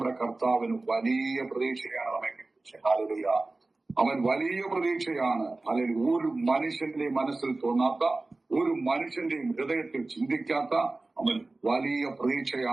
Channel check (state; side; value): quieter; left; 3.2 dB